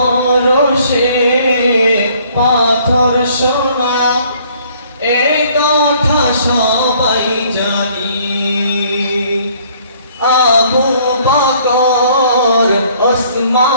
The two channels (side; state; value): both; inverted; correlation -0.60